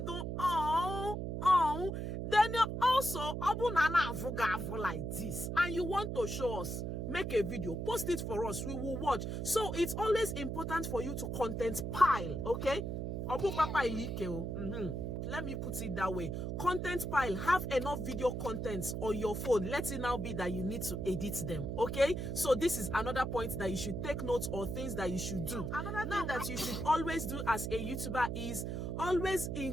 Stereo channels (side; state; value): right; noise; hum, 3 dB below the sound